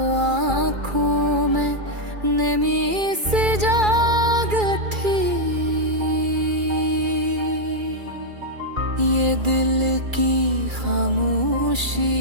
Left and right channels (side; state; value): left; late; 2.3 ms